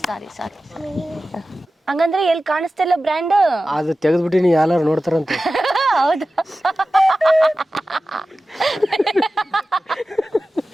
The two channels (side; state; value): both; normal; correlation 0.95